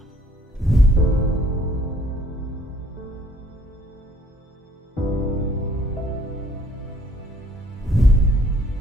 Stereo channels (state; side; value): normal; both; correlation 0.61